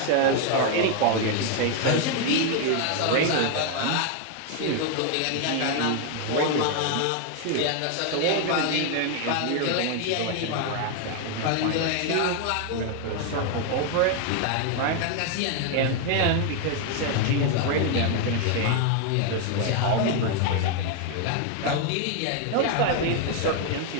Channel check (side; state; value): both; different; correlation 0.00